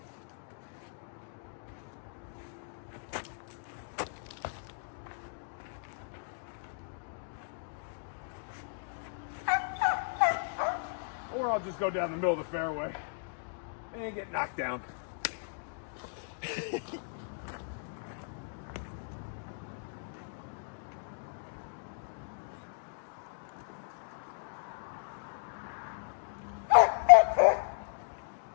Or I'll just go down the middle of the fairway and get knocked down.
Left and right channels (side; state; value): right; silent; digital silence